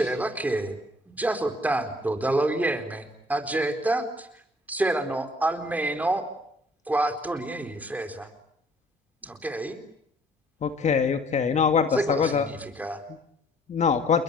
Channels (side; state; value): both; normal; correlation 0.58